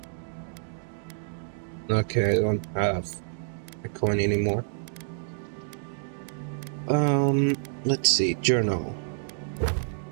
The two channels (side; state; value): left; silent; digital silence